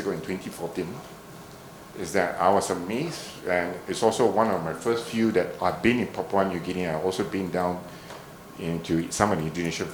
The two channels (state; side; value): identical; both; correlation 1.00